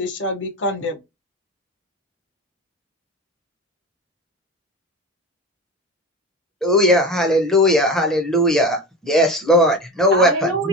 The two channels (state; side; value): normal; both; correlation 0.28